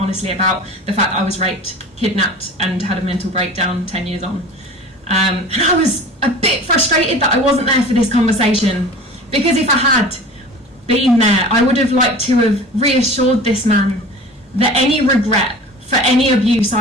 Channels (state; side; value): normal; both; correlation 0.40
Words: about the fact that I was raped, kidnapped and had a mental breakdown 10 years on. And I was a bit frustrated that I wasn't there for this conversation, because if I had been there, I would have liked to have reassured this man that any regret for any abuse